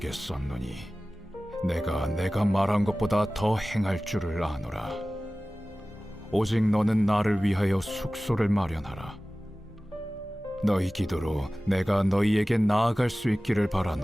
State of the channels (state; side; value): normal; both; correlation 0.97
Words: 썼노니 내가 말한 것보다 더 행할 줄을 아노라. 오직 너는 나를 위하여 숙소를 마련하라. 너희 기도로 내가 너희에게 나아갈 수 있기를